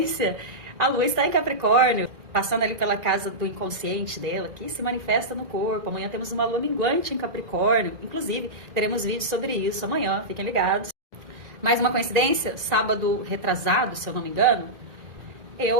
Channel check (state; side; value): late; left; 1.9 ms